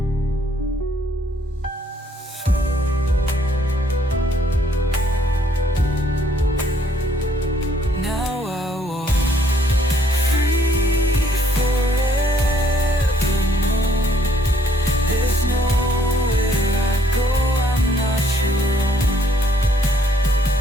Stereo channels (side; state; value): both; normal; correlation 0.66